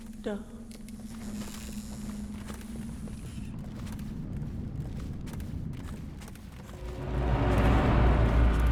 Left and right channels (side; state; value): both; identical; correlation 1.00